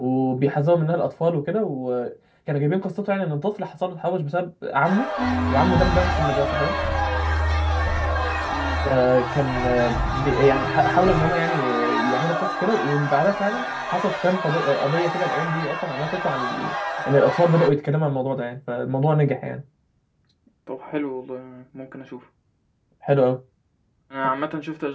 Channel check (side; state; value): both; identical; correlation 1.00